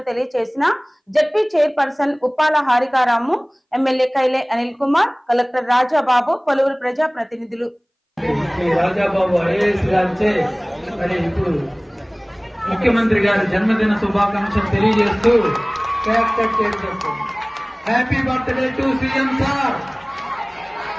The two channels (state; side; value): identical; both; correlation 1.00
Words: తెలియజేసిన ZP chairperson Uppala హారికారాము, MLA కైలే Anil Kumar, collector Rajababu, పలువురు ప్రజా ప్రతినిధులు. ముఖ్యమంత్రి గారి జన్మదిన శుభాకాంక్షలు తెలియజేస్తూ కేక్ కట్ చేస్తారు. Happy birthday to CM sir,